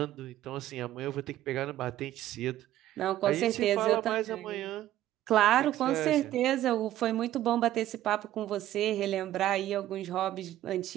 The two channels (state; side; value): quieter; left; 13.4 dB